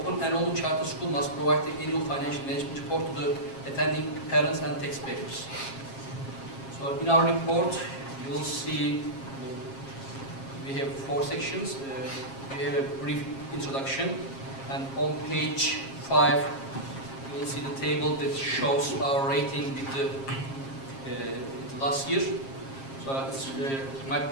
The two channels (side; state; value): right; late; 7.4 ms